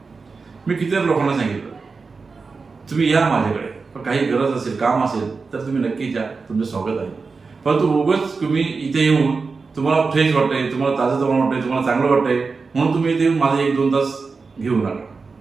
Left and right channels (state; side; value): quieter; left; 4.5 dB